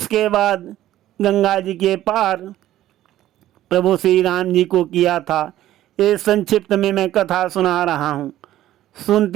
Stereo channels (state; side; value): quieter; left; 13.7 dB